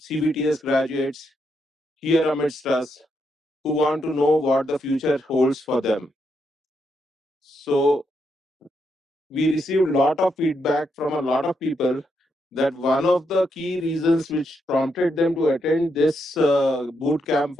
graduates here amidst us who want to know what the future holds for them. So we received a lot of feedback from a lot of people that one of the key reasons which prompted them to attend this boot camp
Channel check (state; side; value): normal; both; correlation 0.80